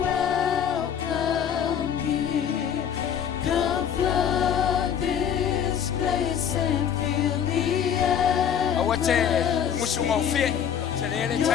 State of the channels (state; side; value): quieter; right; 8.5 dB